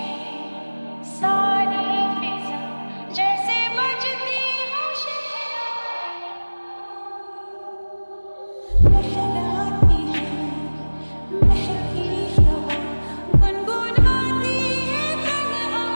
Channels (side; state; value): both; inverted; correlation -1.00